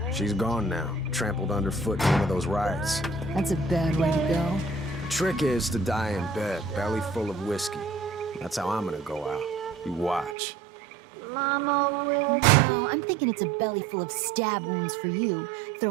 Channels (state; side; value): drops out; left; at 10.4 s